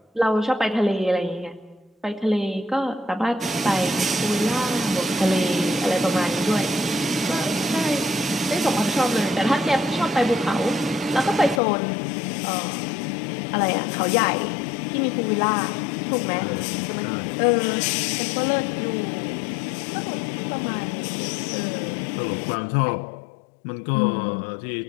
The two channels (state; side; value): drops out; right; at 11.6 s